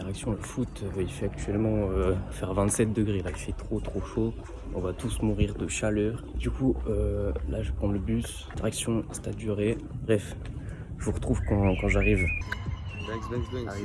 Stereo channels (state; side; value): identical; both; correlation 1.00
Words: Il fait actuellement faire 27 degrés. Là, il fait trop chaud. On va tous mourir de chaleur. Du coup, là, je vais prendre le bus. Direction Stade du Ré. Bref, je vous retrouve quand j'arrive.